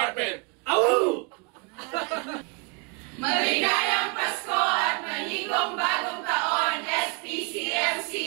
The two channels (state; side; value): quieter; left; 32.5 dB